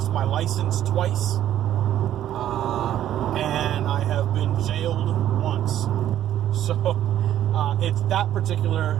my license twice, and I have been jailed once. So it's that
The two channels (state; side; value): quieter; left; 11.6 dB